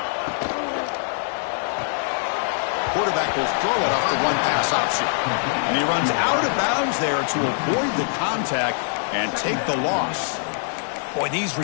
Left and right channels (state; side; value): silent; right; digital silence